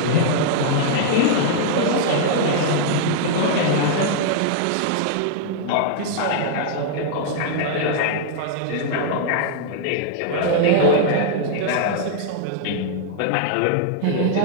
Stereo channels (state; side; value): different; both; correlation -0.01